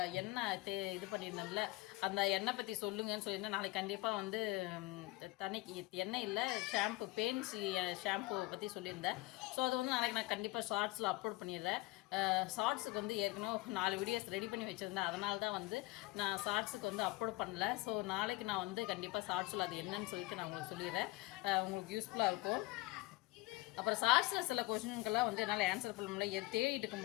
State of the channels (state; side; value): quieter; right; 21.2 dB